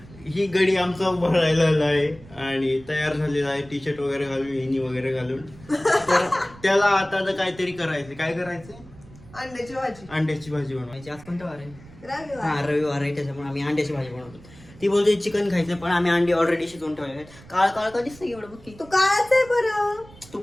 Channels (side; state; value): right; noise; rumble, 21 dB below the sound